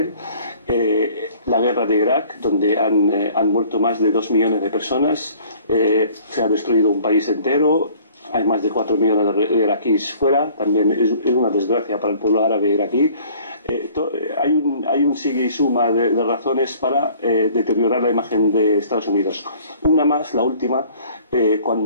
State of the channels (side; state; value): both; inverted; correlation -0.53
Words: la guerra de Irak, donde han muerto más de 2 millones de personas, se ha destruido un país entero, hay más de 4 millones de iraquíes fuera, también es una desgracia para el pueblo árabe iraquí. Hay un sigue y suma de razones para deteriorar la imagen de Estados Unidos. Una más, la última,